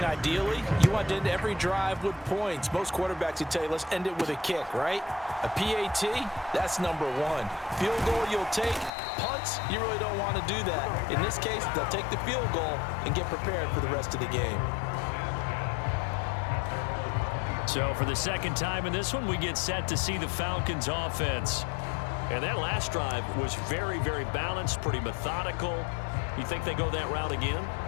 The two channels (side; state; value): right; drops out; at 8.9 s